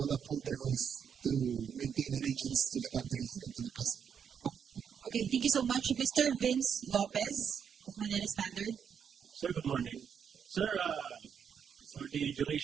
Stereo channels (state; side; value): quieter; left; 7.5 dB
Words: uphold their oath to maintain allegiance to the country and to the president. Okay, thank you so much. Mr. Vince Lopez of Manila Standard. Sir, good morning. Sir, for the